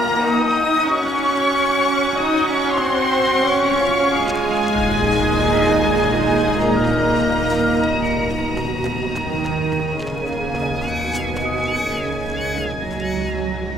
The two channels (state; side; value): normal; both; correlation 0.72